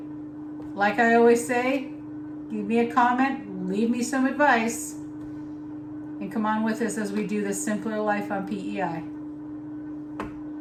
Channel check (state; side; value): identical; both; correlation 1.00